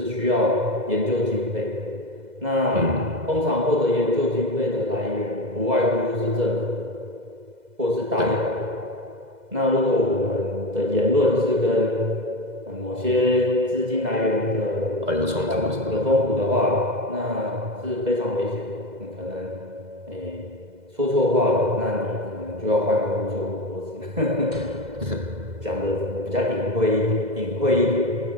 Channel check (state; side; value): late; left; 2.0 ms